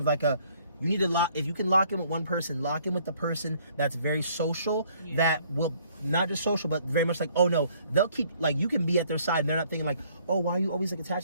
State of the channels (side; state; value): both; inverted; correlation -0.62